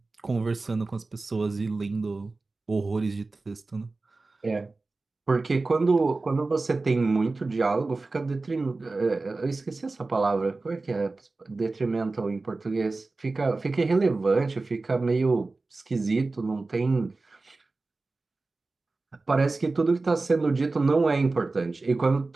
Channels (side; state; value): left; quieter; 3.5 dB